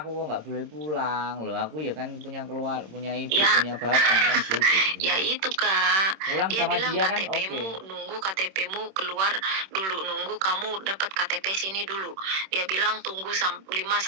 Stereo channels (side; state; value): left; late; 26 ms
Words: kok nggak boleh pulang loh, aku ya kan punya ibu ya, punya bapak kan gitu. Ya itu kak. Pulang dia sama bilang dia kan KTP-mu nunggu KTP-mu keluar dulu, nunggu kamu dapat KTP sini dulu. Dia bilang tunggu